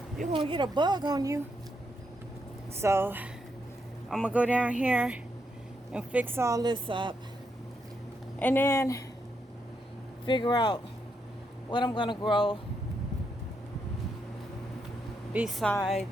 You're gonna get a bug on you. So I'm gonna go down here and fix all this up. And then figure out what I'm gonna grow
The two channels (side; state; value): both; normal; correlation 0.80